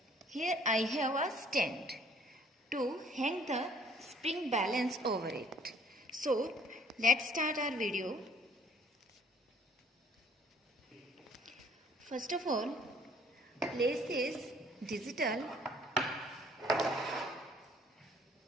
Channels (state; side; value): normal; both; correlation 0.59